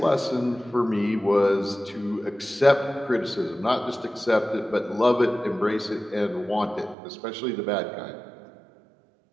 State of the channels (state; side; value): drops out; left; at 7.0 s